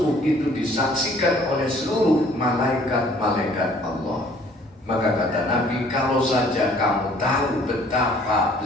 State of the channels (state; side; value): normal; both; correlation 0.57